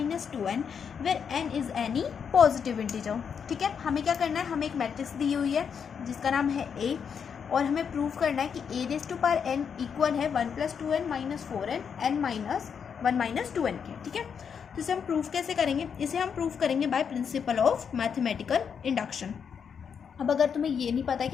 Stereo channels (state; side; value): quieter; right; 7.0 dB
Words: - 2n where n is any positive integer. ठीक है, हमें क्या करना है, हमें एक मैट्रिक्स दी हुई है जिसका नाम है a और हमें प्रूव करना है कि a raise to power n equal है 1 + 2n - 4n n - 1 - 2n के। ठीक है, तो इसे हम प्रूफ कैसे करेंगे, इसे हम प्रूफ करेंगे by principle of mathematical induction. अब अगर तुम्हें ये नहीं पता है